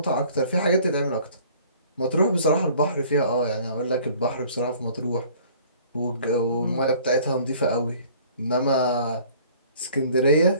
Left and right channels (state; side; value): inverted; both; correlation -0.53